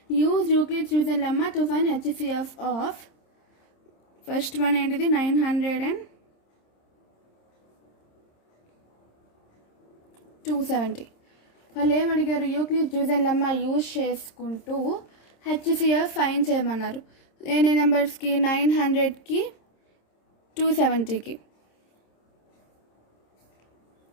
Use Euclid's-Jeusen lemma to find HCF of first one ఏంటిది 90270. వాళ్ళు ఏమడిగారు, Euclid's division lemma use చేసుకుంటూ HCF find చేయమన్నారు. ఎన్ని నెంబర్స్కి? 900కి 270కి.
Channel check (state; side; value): late; right; 26 ms